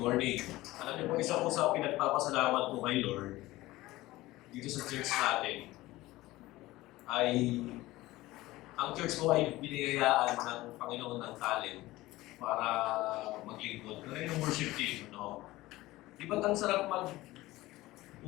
morning. Alam niyo po, isa po sa pinagpapasalamat ko kay Lord dito sa church natin ay ang church ko ay binigayaan ng Panginoon ng talent para maglingkod. Kaya yung worship team, no? Di ba't ang sarap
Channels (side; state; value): right; quieter; 18.2 dB